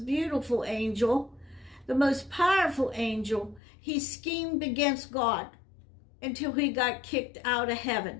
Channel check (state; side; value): drops out; right; at 3.6 s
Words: beautiful angel, the most powerful angel, he schemed against God until he got kicked out of